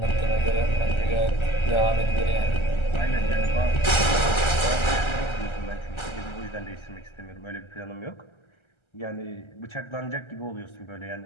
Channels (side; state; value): right; late; 1.3 ms